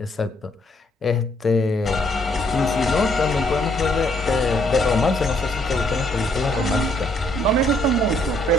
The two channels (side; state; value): both; normal; correlation 0.69